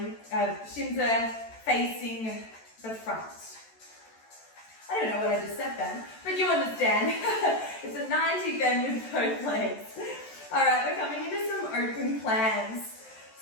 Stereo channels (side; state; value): right; late; 13 ms